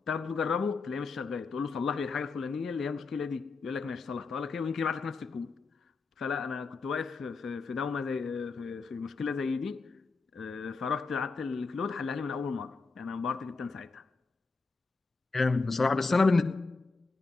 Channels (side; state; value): right; quieter; 4.2 dB